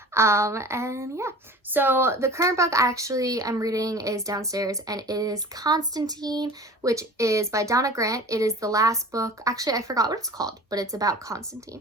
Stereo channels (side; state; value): both; normal; correlation 0.41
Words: And yeah, so the current book I'm reading is downstairs, and it is Constantine, which is by Donna Grant. It is the last book. Actually, I forgot what it's called, but it's about